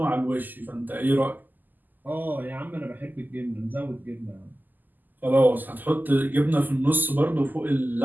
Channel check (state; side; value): late; left; 0.086 ms